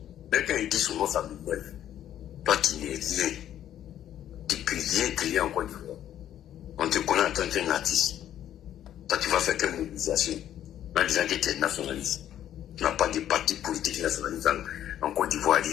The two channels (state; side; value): quieter; right; 11.2 dB